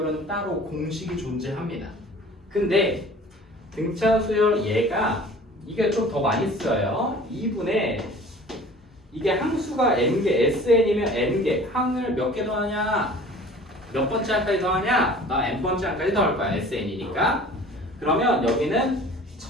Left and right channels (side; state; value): both; normal; correlation 0.46